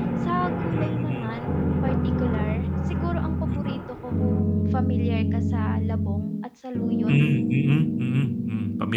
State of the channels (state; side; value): identical; both; correlation 1.00